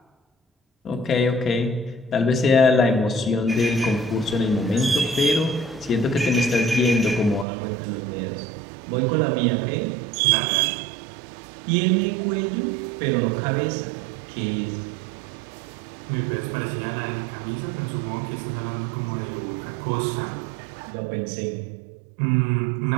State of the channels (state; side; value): drops out; left; at 7.5 s